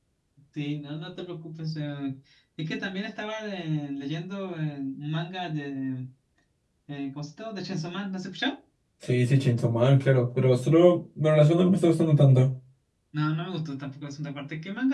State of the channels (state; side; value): identical; both; correlation 1.00